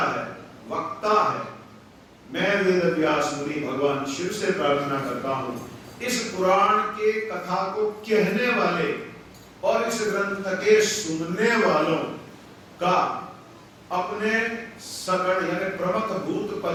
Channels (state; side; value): identical; both; correlation 1.00